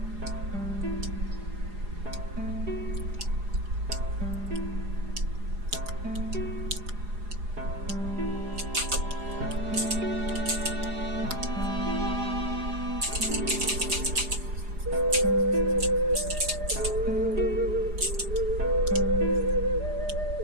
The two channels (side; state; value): left; late; 4.9 ms